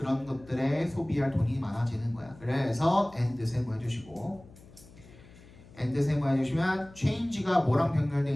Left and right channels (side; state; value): left; noise; hum, 22 dB below the sound